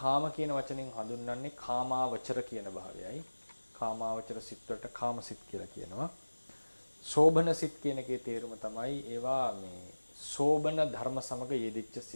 කියන වචනෙන් හඳුන්වන්නේ කාමාවචර කියන භාවයයි. කාමාවචර සිත් වලට කාම සිත් කියලා කියනවා. සෝබන සිත් කියන එකේ තේරුම තමයි ඒවා මේ සෝබන ධර්ම සමග යෙදිච්ච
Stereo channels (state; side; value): inverted; both; correlation -1.00